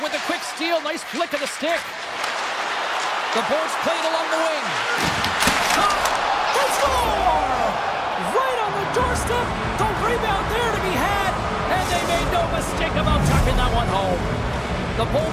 with a quick steal. Nice flick of the stick. The Bolts played along the wing. Shot. They score! Right on the doorstep. The rebound there to be had. And they made no mistake about tucking that one home. The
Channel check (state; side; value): identical; both; correlation 1.00